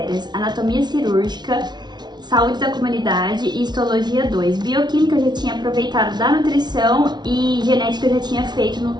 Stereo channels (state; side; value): late; left; 0.20 ms